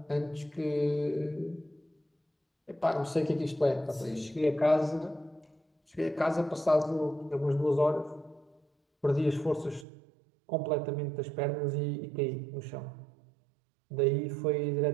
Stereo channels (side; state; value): left; drops out; at 9.9 s